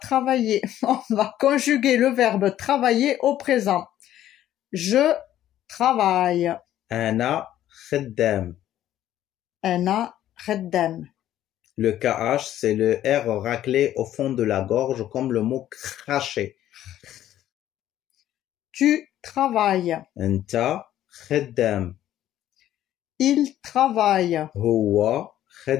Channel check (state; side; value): quieter; right; 12.4 dB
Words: on va conjuguer le verbe travailler au présent. Je travaille. Ana khaddam. Ana khaddam. Le KH, c'est le R raclé au fond de la gorge comme le mot cracher. Tu travailles. Anta khaddam. Il travaille. Huwa